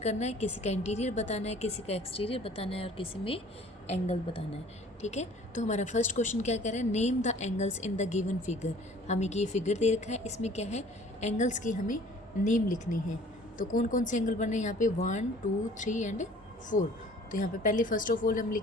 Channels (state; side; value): normal; both; correlation 0.51